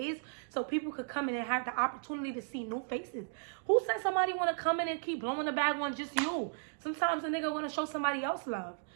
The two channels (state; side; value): silent; left; digital silence